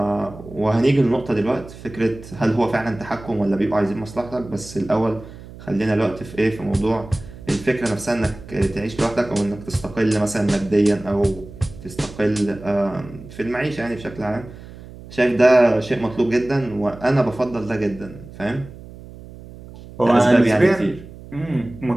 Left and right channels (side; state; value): right; noise; hum, 17 dB below the sound